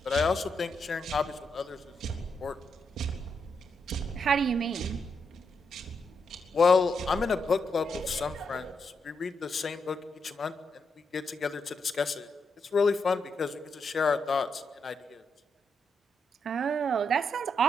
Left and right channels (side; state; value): both; normal; correlation 0.81